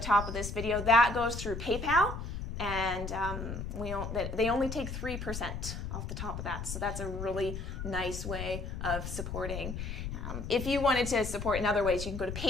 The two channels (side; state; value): left; noise; rumble, 6 dB below the sound